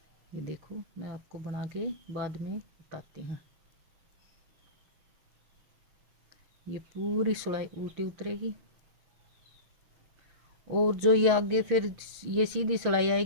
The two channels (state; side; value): late; left; 6.5 ms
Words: ये देखो, मैं आपको बना के बाद में बताती हूँ। ये पूरी सिलाई उल्टी उतरेगी, और जो ये आगे फिर ये सीधी सिलाई